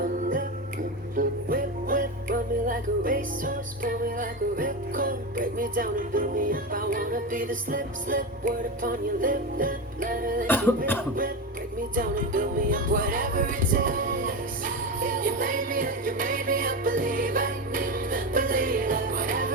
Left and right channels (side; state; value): both; normal; correlation 0.19